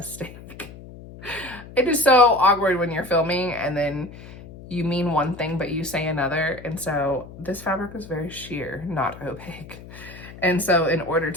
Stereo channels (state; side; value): noise; left; hum, 16 dB below the sound